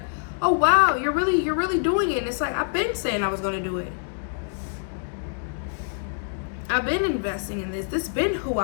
oh, wow, you're really doing it. And it's like, I've been saying I was going to do it. I've been investing in this. This has been who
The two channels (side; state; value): right; silent; digital silence